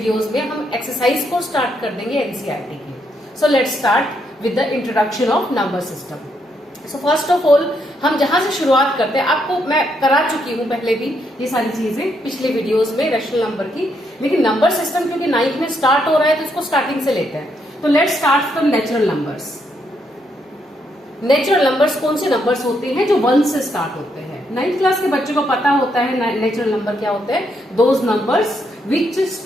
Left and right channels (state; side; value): normal; both; correlation 0.76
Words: में हम एक्सरसाइज को स्टार्ट कर देंगे एनसीईआरटी की। So let's start with the introduction of number system. So first of all हम जहां से शुरुआत करते हैं, आपको मैं करा चुकी हूं पहले भी ये सारी चीजें पिछले वीडियोस में रैशनल नंबर की, लेकिन नंबर सिस्टम क्योंकि 9th में स्टार्ट हो रहा है तो इसको स्टार्टिंग से लेते हैं। तो let's start from natural numbers. Natural numbers कौन से नंबर्स होते हैं जो 1 से स्टार्ट होते हैं? 9th क्लास के बच्चों को पता होता है नेचुरल नंबर क्या होते हैं। Those numbers which